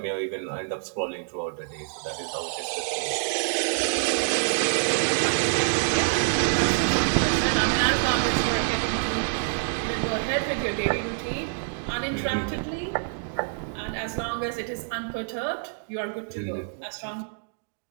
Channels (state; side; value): silent; left; digital silence